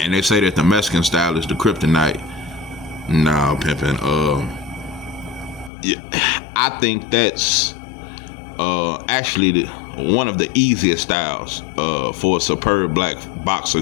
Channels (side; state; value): right; drops out; at 5.7 s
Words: they say that the Mexican style is the kryptonite. Nah, pimpin'. I think that's actually one of the easiest styles for a superb black boxer